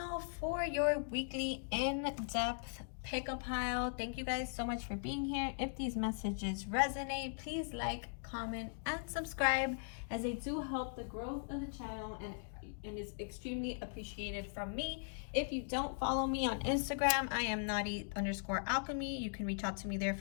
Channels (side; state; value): right; silent; digital silence